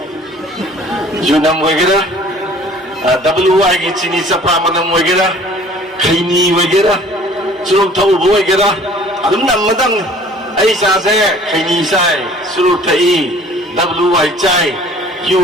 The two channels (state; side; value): normal; both; correlation 0.51